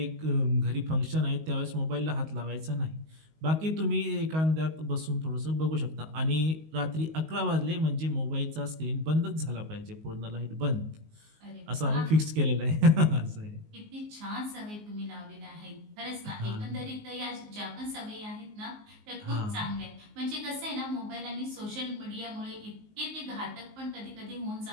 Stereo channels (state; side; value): late; left; 19 ms